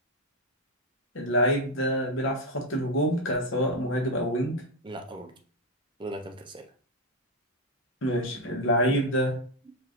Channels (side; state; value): both; normal; correlation 0.05